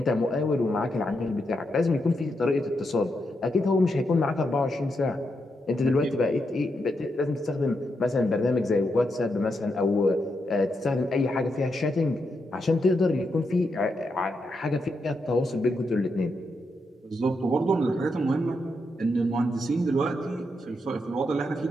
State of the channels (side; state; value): both; normal; correlation 0.83